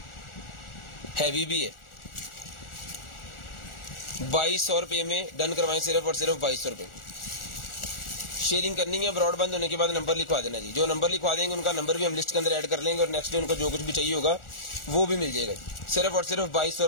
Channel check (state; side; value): late; right; 1.4 ms